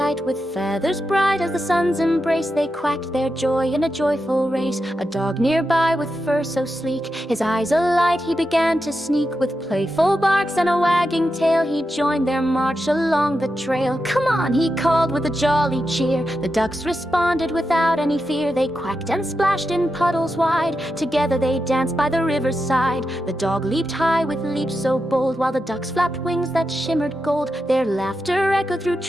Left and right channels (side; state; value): both; normal; correlation 0.88